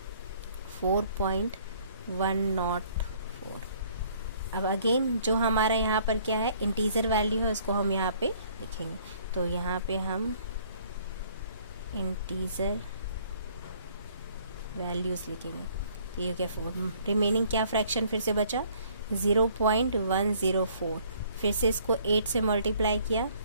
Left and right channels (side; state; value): both; inverted; correlation -0.60